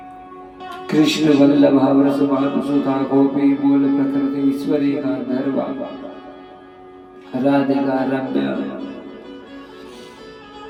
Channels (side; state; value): both; identical; correlation 1.00